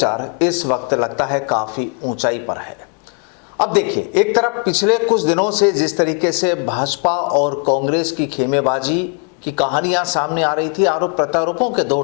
इस वक्त लगता है काफी ऊंचाई पर है। अब देखिए, एक तरफ पिछले कुछ दिनों से जिस तरीके से भाजपा और कांग्रेस की खेमेबाजी की कहानियां सामने आ रही थी, आरोप प्रत्यारोपों के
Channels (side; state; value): right; quieter; 38.3 dB